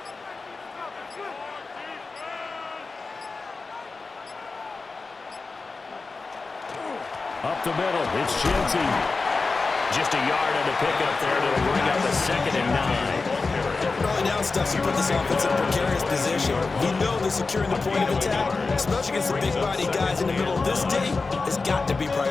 Up the middle, it's Genty. Just a yard on the pickup there to bring up a 2nd and 9. Early down stuff to put this offense in a precarious position. We know that securing the point of attack, especially against the big body guys in the middle of this D, has got to be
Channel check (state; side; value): quieter; right; 4.0 dB